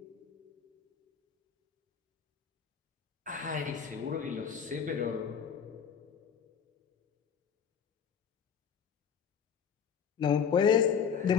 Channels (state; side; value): quieter; right; 7.3 dB